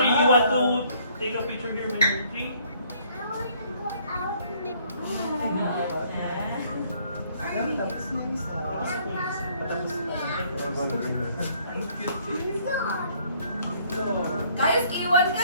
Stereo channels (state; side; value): inverted; both; correlation -0.63